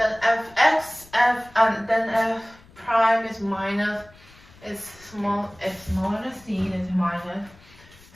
then f prime is minus, is smaller than c, is minus,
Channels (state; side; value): noise; left; rumble, 25 dB below the sound